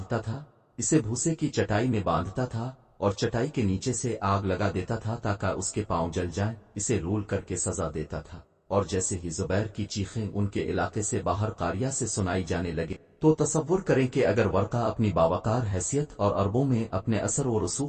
تھا، اسے بھوسے کی چٹائی میں باندھتا تھا اور چٹائی کے نیچے سے آگ لگا دیتا تھا تاکہ اس کے پاؤں جل جائیں، اسے رول کر کے سزا دیتا تھا۔ اور جیسے ہی زبیر کی چیخیں ان کے علاقے سے باہر قاریہ سے سنائی جانے لگے تو تصور کریں کہ اگر ورقہ اپنی باوقار حیثیت اور عربوں میں اپنے اثر و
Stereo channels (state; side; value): identical; both; correlation 1.00